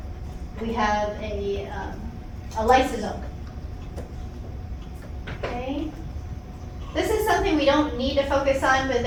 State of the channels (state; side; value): identical; both; correlation 1.00